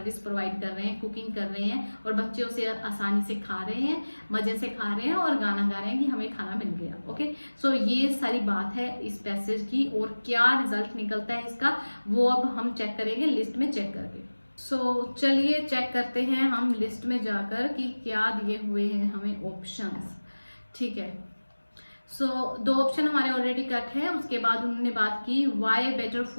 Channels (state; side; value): inverted; both; correlation -1.00